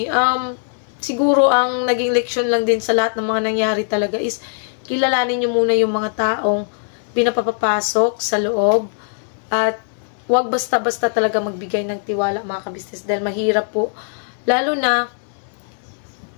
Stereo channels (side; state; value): right; silent; 60 dB below the other